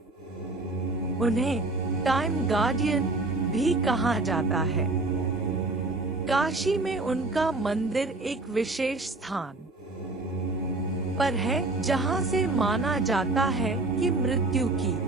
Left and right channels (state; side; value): quieter; left; 3.1 dB